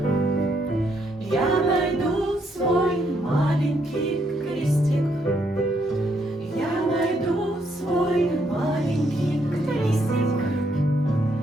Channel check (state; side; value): normal; both; correlation 0.74